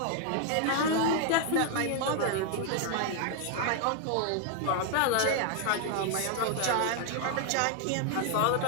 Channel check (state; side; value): different; both; correlation 0.00